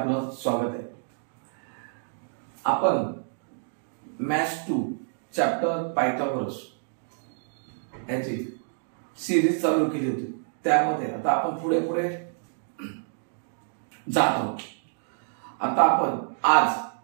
स्वागत आहे. आपण मॅथ्स 2 चॅप्टर पायथागोरस याची सिरीज चालू केली होती. त्यामध्ये आता आपण पुढे पुढे जात आहोत. आता आपण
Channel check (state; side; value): silent; left; digital silence